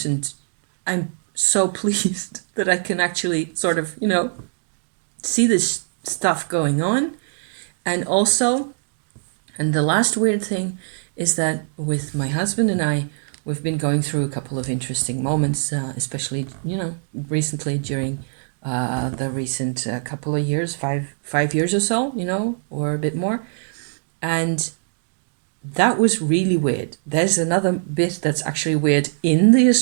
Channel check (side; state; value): left; silent; digital silence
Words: And I'm so pleased that I can actually sort of, see this stuff going on. And also, and the last weird thing is that with my husband and I, we've been going through a couple of interesting moments, especially, recently during the recent couple of years, five years or so, or a bit more. And that was really weird. There's another bit that's actually weird in the